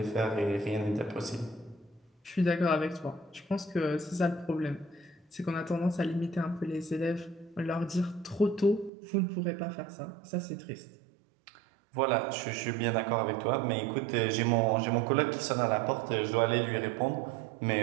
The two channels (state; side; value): drops out; left; at 8.9 s